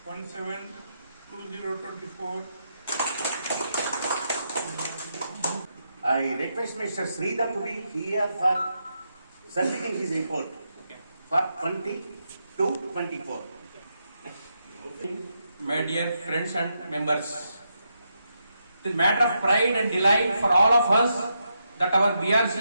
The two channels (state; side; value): inverted; both; correlation -0.83